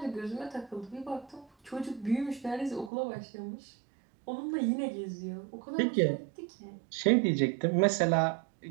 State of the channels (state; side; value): drops out; left; at 2.9 s